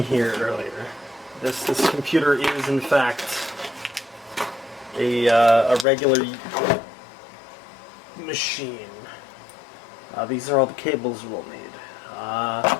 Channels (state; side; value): drops out; right; at 5.9 s